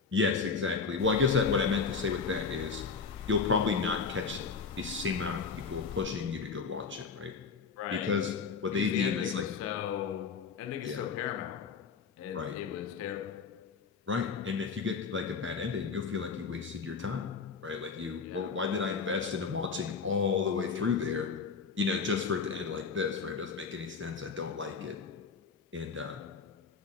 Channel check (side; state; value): right; quieter; 5.2 dB